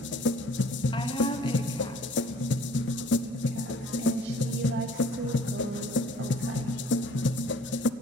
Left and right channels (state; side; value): normal; both; correlation 0.53